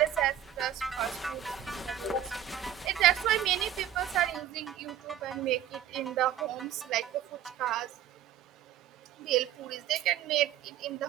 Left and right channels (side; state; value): left; quieter; 10.8 dB